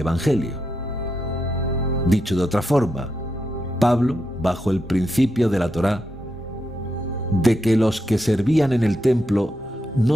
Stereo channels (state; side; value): normal; both; correlation 0.84